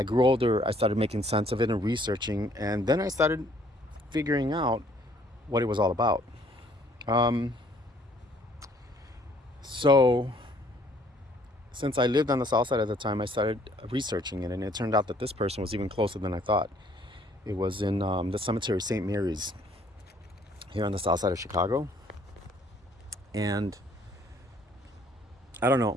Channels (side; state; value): both; normal; correlation 0.61